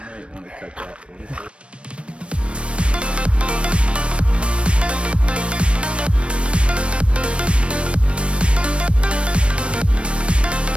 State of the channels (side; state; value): left; late; 0.059 ms